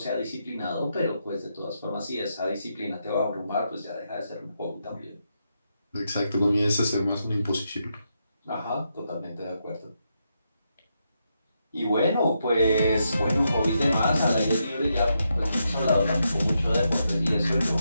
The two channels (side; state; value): both; inverted; correlation -0.83